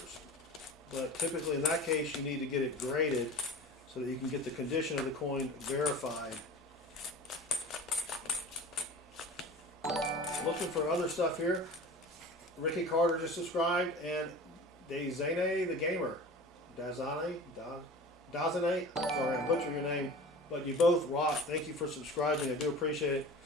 But typically in that case, you need to get it graded so that you can get the condition of the coin verified. Looking for other stuff here. Ricky Carter just subscribed, and Dazane the Gamer. Dazane? Sorry, I butchered your name, but you both rock. Thank you for subscribing. I do appreciate it.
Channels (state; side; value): normal; both; correlation 0.38